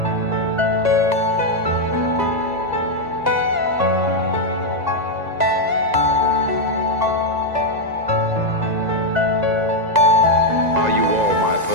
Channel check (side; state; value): left; late; 2.0 ms